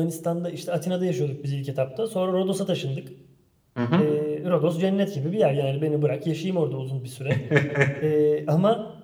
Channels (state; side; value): identical; both; correlation 1.00